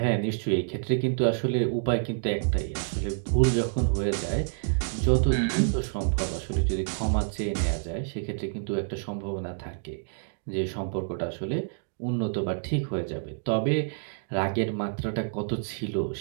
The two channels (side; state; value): left; silent; digital silence